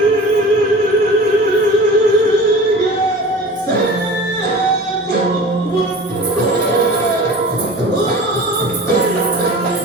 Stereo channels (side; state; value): both; normal; correlation 0.38